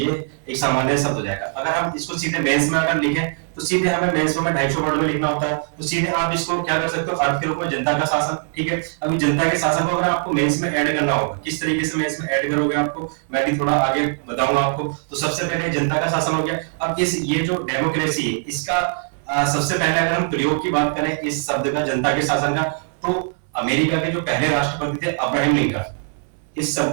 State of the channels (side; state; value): left; silent; 63 dB below the other